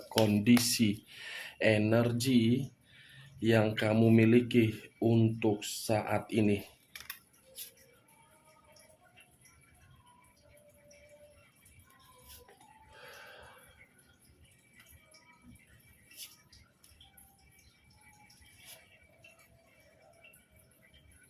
kondisi energi yang kamu miliki untuk saat ini.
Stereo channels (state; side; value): identical; both; correlation 1.00